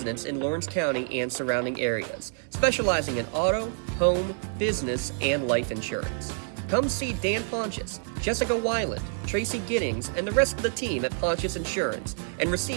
in Lawrence County and surrounding areas, specializing in auto, home, business, and life insurance. Come see Dan Pontius, Jessica Weiland, Tracy Giddings, and the rest of the team at Pontius Insurance and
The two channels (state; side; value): silent; left; digital silence